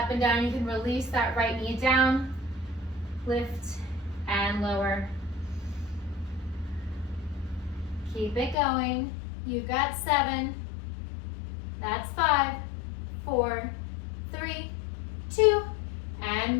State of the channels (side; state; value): right; drops out; at 8.6 s